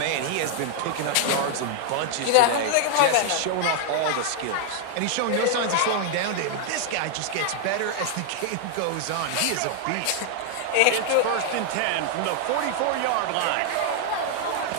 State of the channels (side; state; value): both; different; correlation 0.00